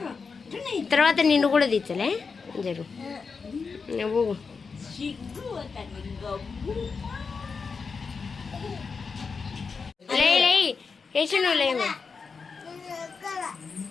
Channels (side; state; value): right; quieter; 5.1 dB